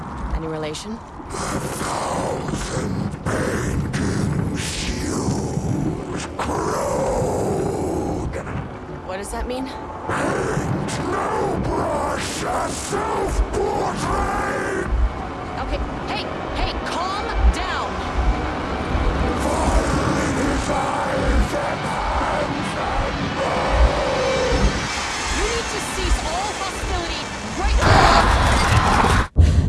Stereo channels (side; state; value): both; identical; correlation 1.00